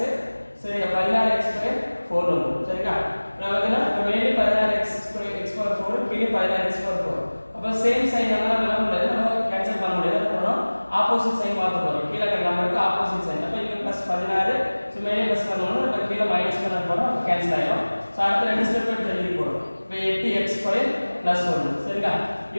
சரி 16x ஸ்கொயர் 4 வரும். சரிங்களா? நமக்கு மேலே 16x ஸ்கொயர் x பவர் 4 கீழே 16x பவர் 4. அப்போ சேம் சைன் எல்லாம் என்ன முடியாது, நம்ம கேன்சல் பண்ண முடியாது. போறோம் ஆப்போசிட் சைன் மாத்த போறோம். கீழ இருக்க நம்பருக்கு ஆப்போசிட் சைன். அப்ப இங்க +16 சோ மேலே ப்ளஸ் பண்ணனும், அப்ப கீழ மைனஸ் பண்ண போறோம். அப்ப கேன்சல் ஆயிடும். சோ அடுத்த ரெண்டு ஸ்டெப் எடுத்து எழுதி போறோம். இப்போ 8x ஸ்கொயர் +1. சரிங்களா?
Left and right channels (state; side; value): inverted; both; correlation -1.00